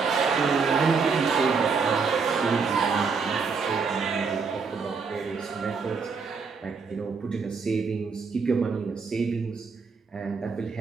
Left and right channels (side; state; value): left; quieter; 5.1 dB